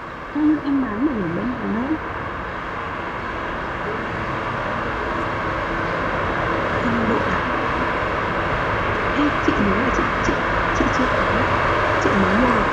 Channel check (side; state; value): both; identical; correlation 1.00